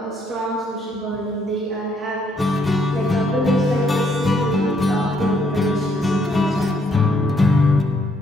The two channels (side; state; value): both; normal; correlation 0.71